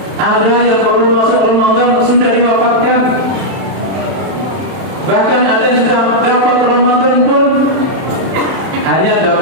Ada yang baru masuk Ramadan sudah diwafatkan. Bahkan ada yang sudah dapat Ramadan pun hanya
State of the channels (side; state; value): left; late; 31 ms